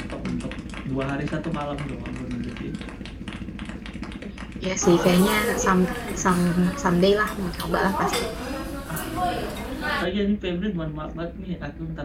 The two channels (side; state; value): both; identical; correlation 1.00